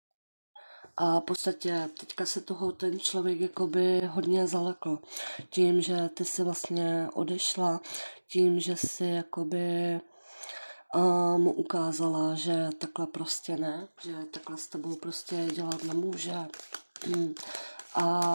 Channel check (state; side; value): inverted; both; correlation -1.00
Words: A v podstatě teďka se toho ten člověk jakoby hodně zalekl. Tím, že ty si vlastně odešla, tím, že si jakoby mu ukázala, že takhle prostě ne, že takhle s tebou prostě dělat nemůže.